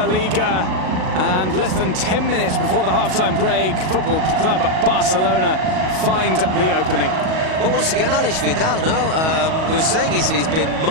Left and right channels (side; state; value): left; late; 38 ms